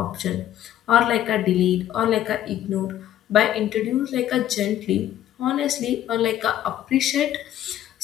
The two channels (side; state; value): right; quieter; 12.0 dB